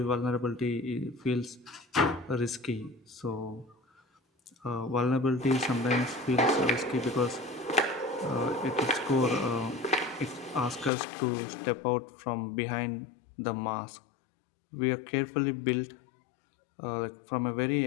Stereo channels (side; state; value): right; drops out; at 10.9 s